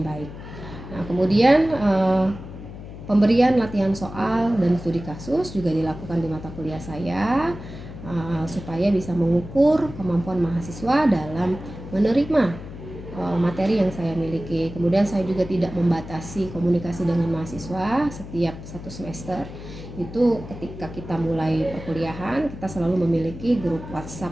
Nah, kemudian pemberian latihan soal dan studi kasus juga dilakukan di mata kuliah saya supaya bisa mengukur kemampuan mahasiswa dalam menerima materi yang saya miliki. Kemudian saya juga tidak membatasi komunikasi dengan mahasiswa setiap satu semester. Itu ketika kita mulai perkuliahan, kita selalu memiliki grup WhatsApp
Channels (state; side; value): noise; left; hum, 13 dB below the sound